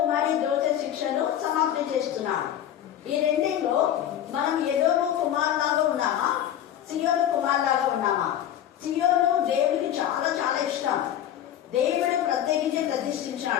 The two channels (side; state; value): right; quieter; 11.0 dB